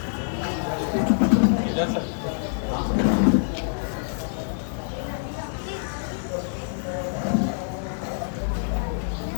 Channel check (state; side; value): silent; right; 61 dB below the other